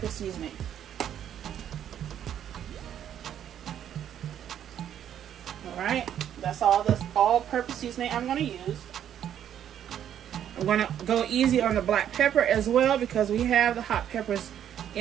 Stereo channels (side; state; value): left; quieter; 10.0 dB